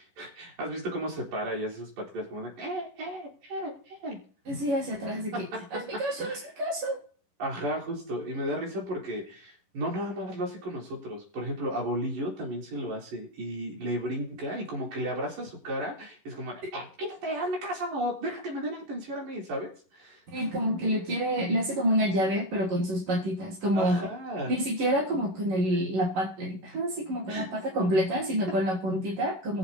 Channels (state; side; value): late; left; 11 ms